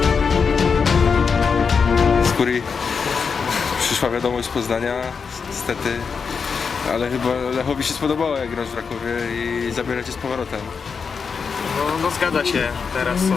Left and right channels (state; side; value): quieter; right; 5.7 dB